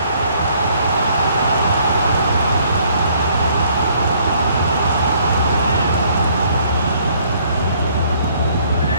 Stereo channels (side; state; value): both; inverted; correlation -0.63